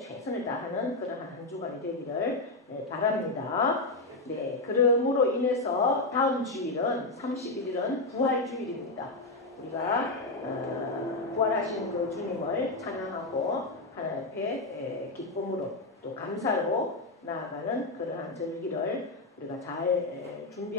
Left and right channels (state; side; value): quieter; right; 3.1 dB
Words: 다하는 그런 한 주간이 되기를 바랍니다. 네, 그러므로 인해서 다음 주일은 31일은 부활주일입니다. 우리가 부활하신 그 주님을 찬양하고 하나님 앞에 기쁨으로 또 감사로 나아가는 그러한 절기를 우리가 잘